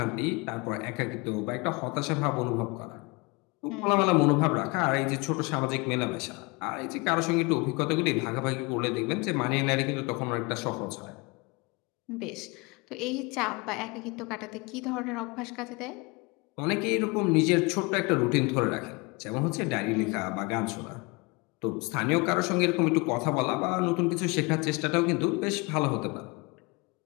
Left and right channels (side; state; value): right; quieter; 27.6 dB